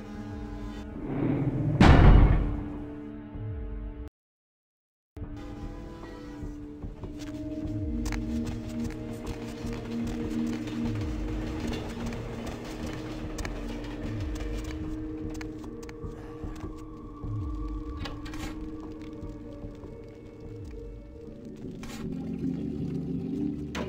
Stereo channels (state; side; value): identical; both; correlation 1.00